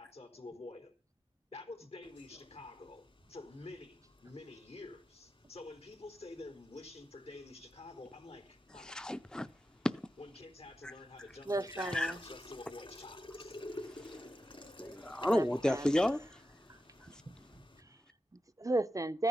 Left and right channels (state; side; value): normal; both; correlation 0.89